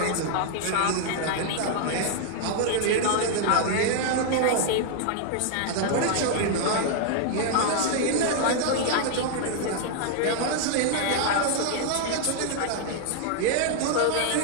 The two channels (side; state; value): both; different; correlation 0.00